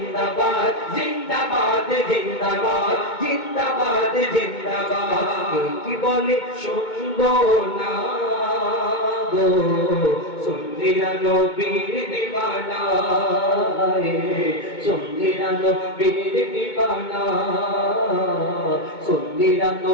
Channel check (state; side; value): late; right; 2.2 ms